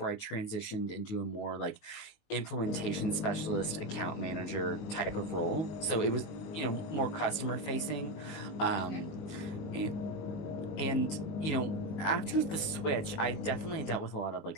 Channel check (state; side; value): late; right; 19 ms